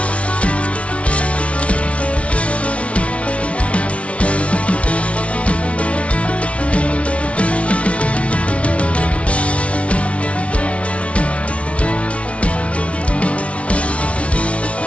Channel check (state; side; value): late; right; 0.062 ms